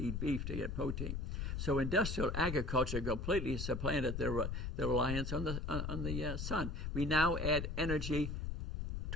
beef to get protein. So industrial agriculture completely supplanted the reliance on the sun. We now add energy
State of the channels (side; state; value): left; noise; rumble, 3 dB below the sound